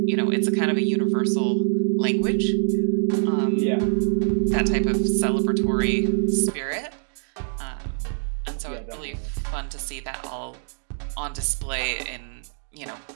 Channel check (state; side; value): silent; left; digital silence